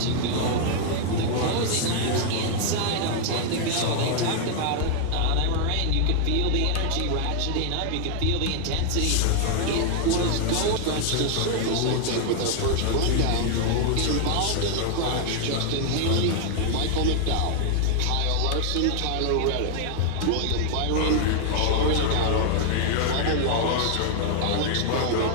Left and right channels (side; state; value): both; different; correlation 0.00